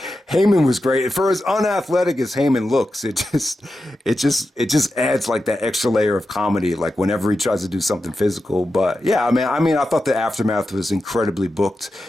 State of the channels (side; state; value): both; normal; correlation 0.90